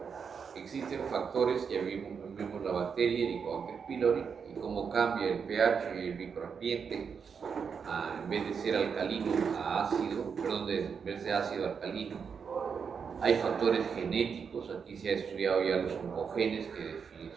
Existen factores, ya vimos la bacteria, el Helicobacter pylori, y cómo cambia el pH y el microambiente, en vez de ser alcalino a ácido, en vez de ácido a alcalino. Hay factores genéticos, aquí se ha estudiado ya los oncogenes, que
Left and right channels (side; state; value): left; quieter; 6.3 dB